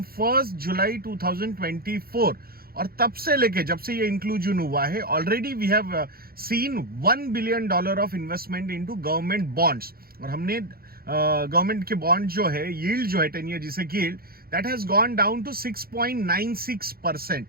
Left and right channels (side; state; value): left; late; 0.44 ms